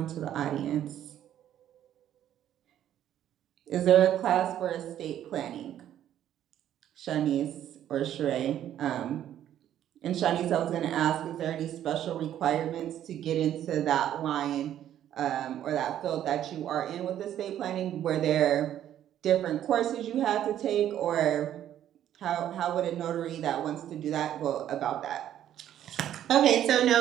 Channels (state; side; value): quieter; left; 11.1 dB